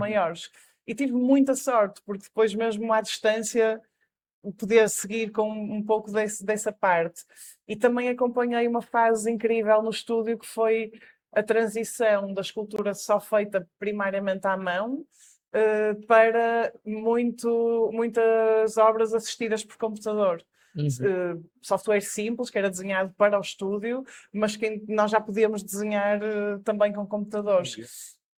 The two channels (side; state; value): both; identical; correlation 1.00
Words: E tive muita sorte, porque depois mesmo à distância podia seguir com um pouco dessa parte. E também acompanhei uma fase incrível no estúdio, que foi a transição da escultura só feita primariamente à mão, para muitas obras assistidas por computador. Software simples, que era desenhado para o estúdio, mas que nós já podíamos desenhar também com computadores.